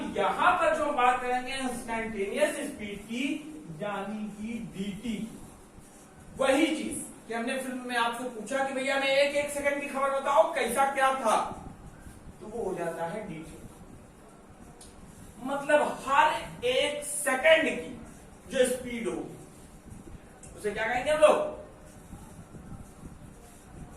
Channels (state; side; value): identical; both; correlation 1.00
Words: यहां पर जो बात करेंगे इंस्टेंटेनियस स्पीड की, यानी कि dt। वही चीज कि हमने फिल्म में आपसे पूछा कि भैया मैं एक एक सेकंड की खबर बताओ कैसा क्या था, तो वो हो जाता है dt। मतलब हर एक सेकंड की जो स्पीड होगी उसे क्या कहेंगे हम लोग?